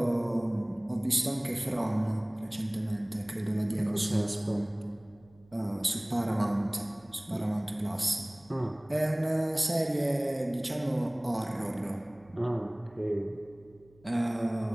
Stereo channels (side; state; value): right; noise; hum, 28 dB below the sound